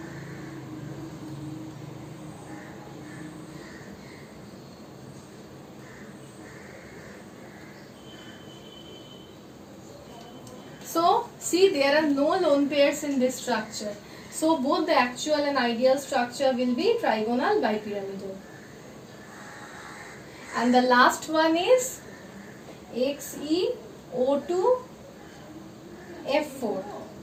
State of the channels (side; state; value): both; identical; correlation 1.00